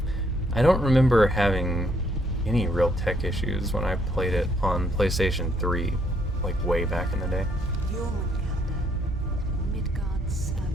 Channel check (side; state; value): both; normal; correlation 0.69